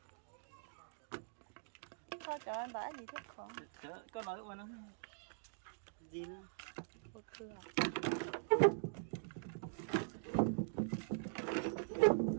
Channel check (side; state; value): left; silent; digital silence